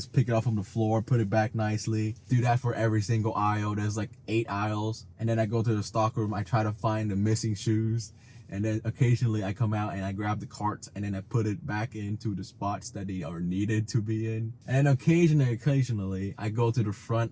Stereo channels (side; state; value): both; identical; correlation 1.00